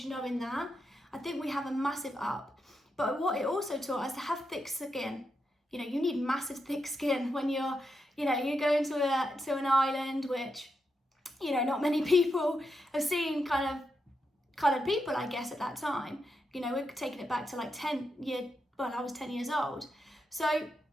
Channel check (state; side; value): normal; both; correlation 0.85